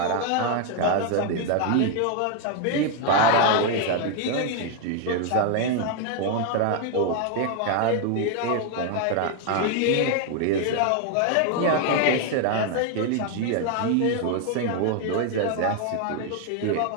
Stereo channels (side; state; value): both; different; correlation 0.01